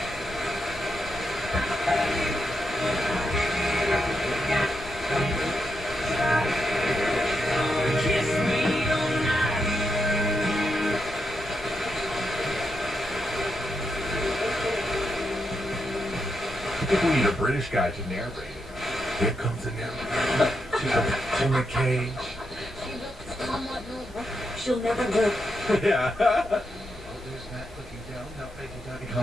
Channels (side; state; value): both; normal; correlation 0.84